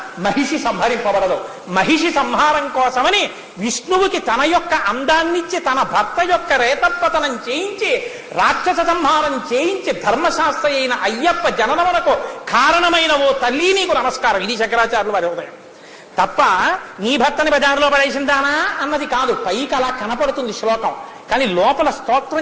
మహిషి సంహరింపబడదు. మహిషి సంహారం కోసమని విష్ణువుకి తన యొక్క అందాన్నిచ్చి తన భర్త యొక్క రేతపతనం చేయించి రాక్షస సంహారం చేయించి ధర్మశాస్త్ర అయిన అయ్యప్ప జననమునకు కారణమైన ఓ తల్లి నీకు నమస్కారం. ఇది శంకరాచార్యులు వారి ఉదయం తప్ప నీ భర్తని బజారులో పడేసిందానా అన్నది కాదు. పైకి అలా కనపడుతుంది శ్లోకం, కానీ లోపల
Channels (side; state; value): both; identical; correlation 1.00